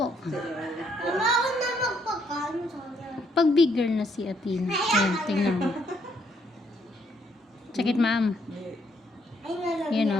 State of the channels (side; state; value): both; normal; correlation 0.71